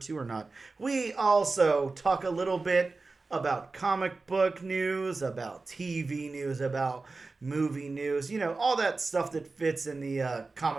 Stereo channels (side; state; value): left; quieter; 3.7 dB